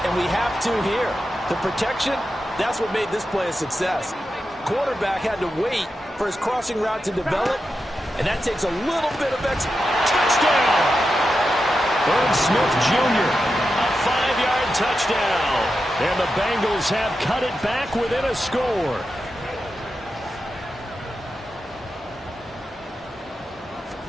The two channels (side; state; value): both; normal; correlation 0.89